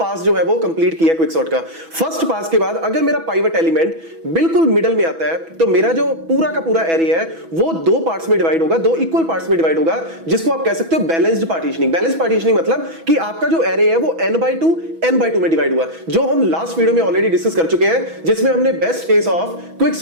जो है वो कंप्लीट किया क्विक सॉर्ट का। फर्स्ट पास के बाद अगर मेरा पाइवट एलिमेंट बिल्कुल मिडल में आता है तो मेरा जो पूरा का पूरा एरे है वो दो पार्ट्स में डिवाइड होगा, दो इक्वल पार्ट्स में डिवाइड होगा, जिसको आप कह सकते हो बैलेंस्ड पार्टीशनिंग। बैलेंस्ड पार्टीशनिंग मतलब कि आपका जो एरे है वो n/2 में डिवाइड हुआ, जो हम लास्ट वीडियो में ऑलरेडी डिस्कस कर चुके हैं, जिसमें हमने best case of quick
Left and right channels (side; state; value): left; late; 6.1 ms